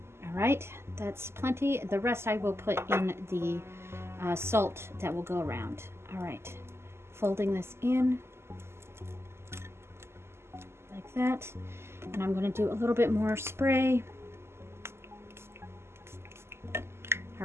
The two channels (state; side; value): late; left; 0.12 ms